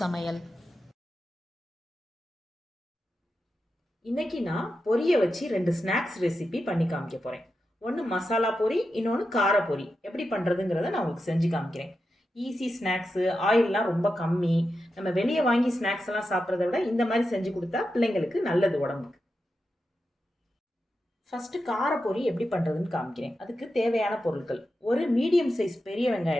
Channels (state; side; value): normal; both; correlation 0.89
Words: இன்னைக்கு நான் பொரியை வச்சு 2 ஸ்நாக்ஸ் ரெசிபி பண்ணி காமிக்க போகிறேன். ஒன்று மசாலா பொரி, இன்னொன்று கார பொரி. எப்படி பண்ணுறதுங்கிறத நான் உங்களுக்கு செஞ்சு காமிக்கிறேன். ஈஸி ஸ்நாக்ஸு, ஆயிலெலாம் ரொம்ப கம்மி. நம்ம வெளியே வாங்கி ஸ்நாக்ஸ் எல்லாம் சாப்பிட்றத விட இந்த மாதிரி செஞ்சு கொடுத்தா பிள்ளைங்களுக்கு நல்லது உடம்புக்கு. ஃபஸ்ட்டு கார பொரி எப்படி பண்ணுறதுன்னு காமிக்கிறேன். அதுக்கு தேவையான பொருட்கள்: ஒரு மீடியம் சைஸ் பெரிய